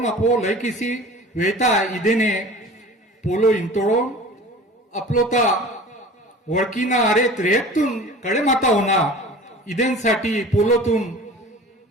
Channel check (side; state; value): both; normal; correlation 0.41